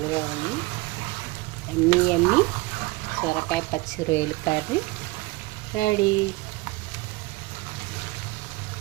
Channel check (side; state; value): left; quieter; 22.3 dB